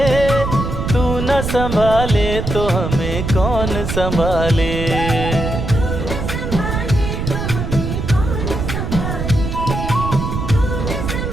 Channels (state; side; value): noise; right; rumble, 3 dB below the sound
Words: तू न संभाले तो हमें कौन संभाले।